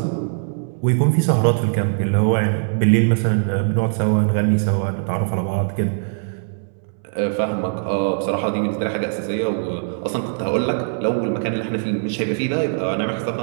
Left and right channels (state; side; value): silent; left; 65 dB below the other